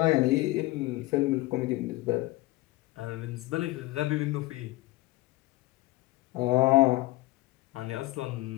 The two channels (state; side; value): quieter; right; 19.8 dB